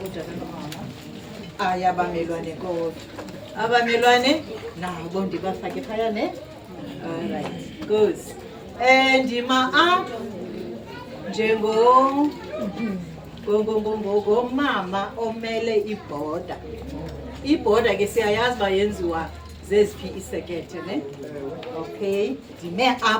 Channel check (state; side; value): identical; both; correlation 1.00